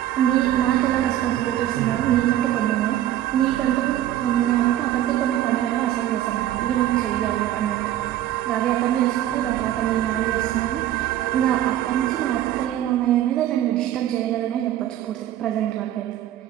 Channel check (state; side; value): quieter; left; 12.7 dB